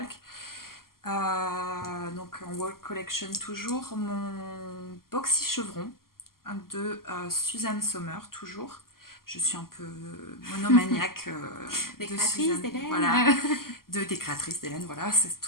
Donc en World Collection toujours, mon boxy chevron de Suzanne Sommer, toujours. Je suis un peu monomaniaque de créatrice d'Hélène. Voilà, des créatrices d'Hélène, voilà, c'est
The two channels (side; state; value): right; late; 0.92 ms